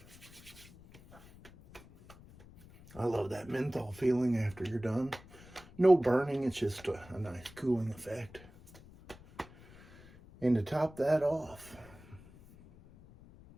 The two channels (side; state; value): left; noise; rumble, 21 dB below the sound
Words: I love that menthol feeling after you're done. No burning, it's just a nice cooling effect. And to top that off,